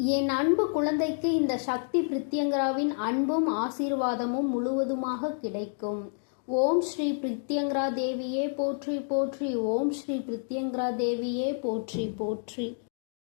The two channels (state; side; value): silent; right; digital silence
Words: என் அன்பு குழந்தைக்கு இந்த சக்தி பிரித்யங்கராவின் அன்பும் ஆசீர்வாதமும் முழுவதுமாக கிடைக்கும். ஓம் ஸ்ரீ பிரித்யங்கரா தேவியே போற்றி போற்றி. ஓம் ஸ்ரீ பிரித்யங்கரா தேவியே போற்றி போற்றி.